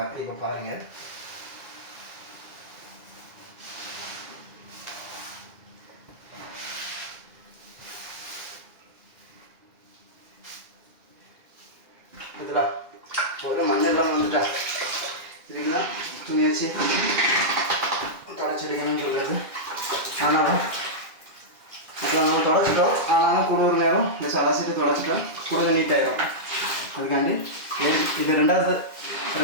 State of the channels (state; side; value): late; left; 2.4 ms